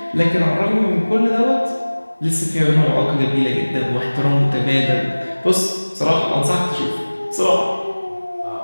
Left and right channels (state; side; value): inverted; both; correlation -1.00